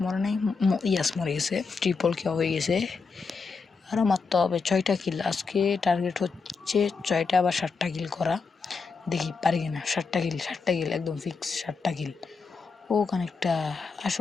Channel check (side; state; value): right; quieter; 4.8 dB